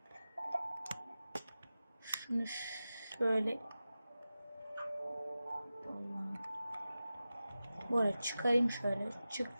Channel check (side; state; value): both; inverted; correlation -0.94